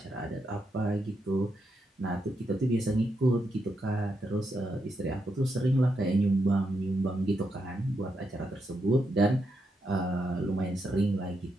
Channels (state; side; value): normal; both; correlation 0.82